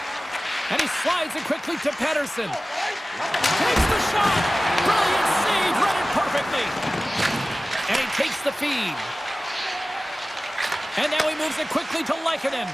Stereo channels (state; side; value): normal; both; correlation 0.97